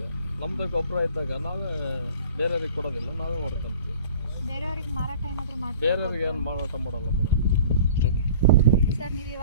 ನಮ್ಮದೇ ಗೊಬ್ಬರ ಇದ್ದಾಗ ನಾವೇ ಬೇರೆಯವ್ರಿಗೆ ಕೊಡೋದಿಲ್ಲ, ನಾವೇ ಹೊಡ್ಕೊಂತೀವಿ. ಬೇರೆಯವ್ರಿಗೆ ಮಾರಾಟ ಏನಾದರೂ ಮಾಡಿ? ಬೇರೆಯವ್ರಿಗೆ ಏನು ಮಾರಾಟ ಮಾಡಲ್ಲ ಮೇಡಮ್. ಸರ್, ನೀವು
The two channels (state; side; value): inverted; both; correlation -0.46